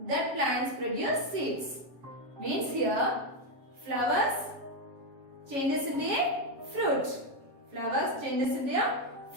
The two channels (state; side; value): late; left; 7.4 ms